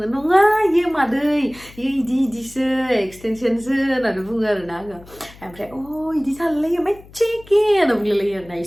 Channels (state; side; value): noise; left; hum, 22 dB below the sound